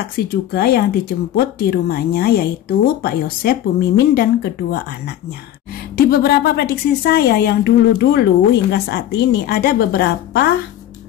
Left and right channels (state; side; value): quieter; right; 12.0 dB